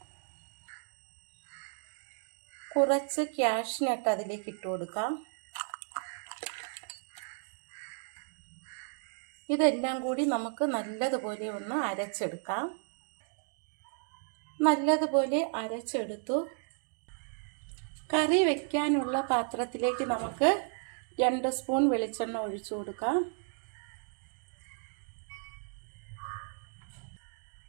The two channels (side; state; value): left; silent; 55 dB below the other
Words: കുറച്ച് കാഷ്നട്ട് അതിലേക്ക് ഇട്ട് കൊടുക്കാം. ഇതെല്ലാം കൂടി നമുക്ക് നല്ലതുപോലെ ഒന്ന് അരച്ചെടുക്കാം. നല്ലതുപോലെ അരച്ചെടുത്തു. കറി വയ്ക്കാനുള്ള പാത്രത്തിലേക്ക് നമുക്ക് 2 സ്പൂൺ വെളിച്ചെണ്ണ ഒഴിച്ചു കൊടുക്കാം.